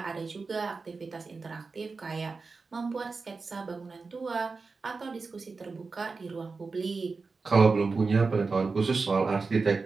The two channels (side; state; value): left; quieter; 4.3 dB